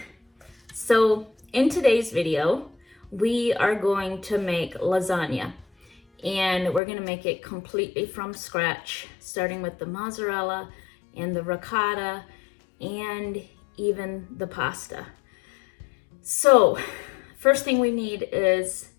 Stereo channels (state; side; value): drops out; right; at 6.8 s